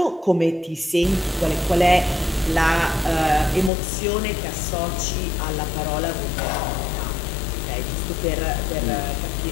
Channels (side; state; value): right; drops out; at 3.7 s